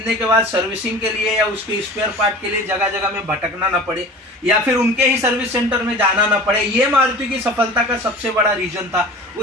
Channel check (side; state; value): both; normal; correlation 0.39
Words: के बाद सर्विसिंग के लिए या उसके स्पेयर पार्ट के लिए जगह जगह में भटकना ना पड़े या फिर उनके ही सर्विस सेंटर में जाना ना पड़े। ये मारुति की सफलता का सबसे बड़ा रीजन था।